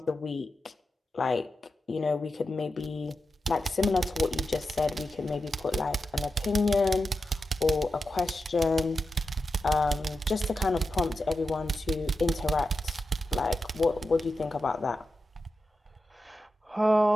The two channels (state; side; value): normal; both; correlation 0.90